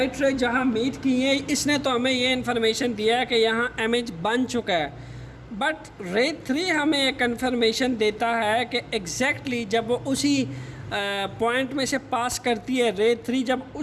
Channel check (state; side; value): identical; both; correlation 1.00